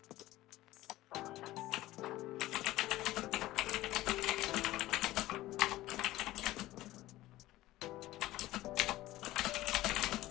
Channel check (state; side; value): quieter; right; 16.6 dB